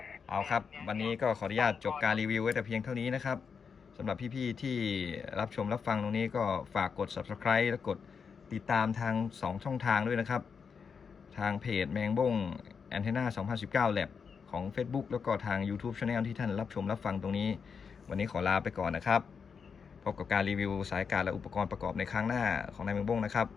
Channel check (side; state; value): right; quieter; 6.0 dB